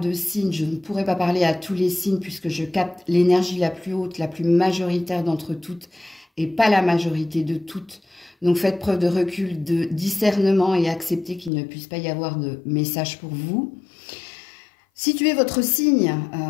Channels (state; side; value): drops out; right; at 11.5 s